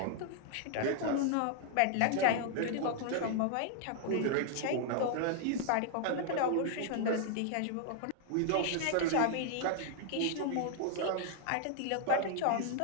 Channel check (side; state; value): both; different; correlation -0.01